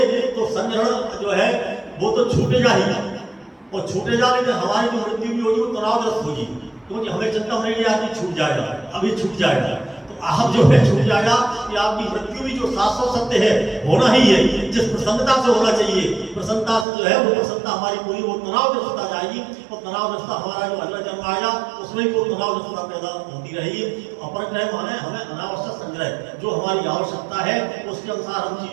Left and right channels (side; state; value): left; drops out; at 16.9 s